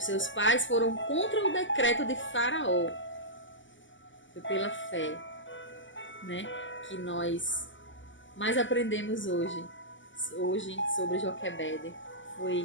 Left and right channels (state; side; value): late; right; 0.55 ms